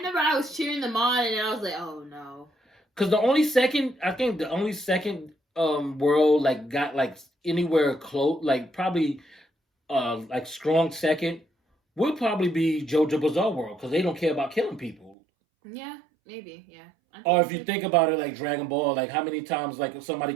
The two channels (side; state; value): left; drops out; at 15.2 s